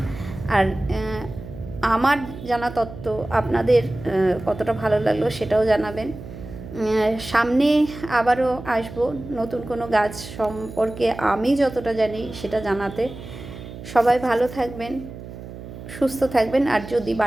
আর আমার জানা তথ্য আপনাদের কতটা ভালো লাগলো সেটাও জানাবেন। সামনে আবারও আসবো নতুন কোনো গাছ সম্পর্কে আমি যতটা জানি সেটা জানাতে। সবাই ভালো থাকবেন, সুস্থ থাকবেন। আর যদি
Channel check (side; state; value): right; noise; hum, 13 dB below the sound